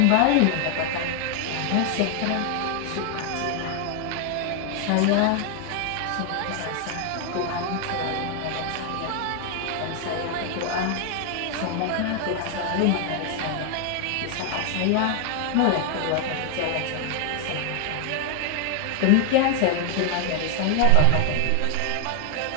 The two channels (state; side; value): different; both; correlation 0.00